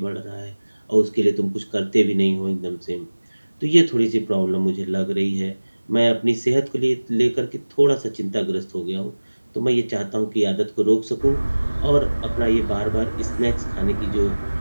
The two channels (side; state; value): both; inverted; correlation -1.00